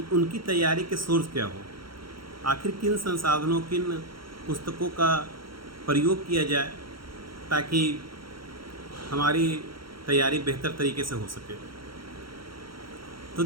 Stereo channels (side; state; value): left; late; 0.74 ms